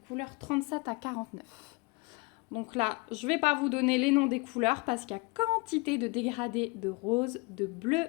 37 à 49. Donc là, je ne vais pas vous donner les noms des couleurs parce qu'il y a quantité de dégradés de rose, de bleu,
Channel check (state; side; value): quieter; right; 27.7 dB